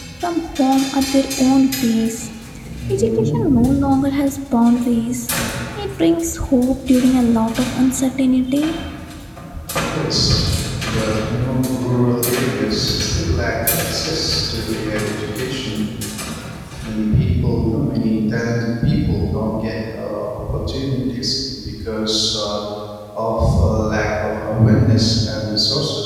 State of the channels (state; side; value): identical; both; correlation 1.00